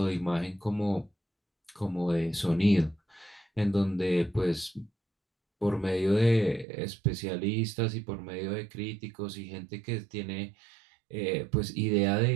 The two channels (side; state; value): left; drops out; at 6.7 s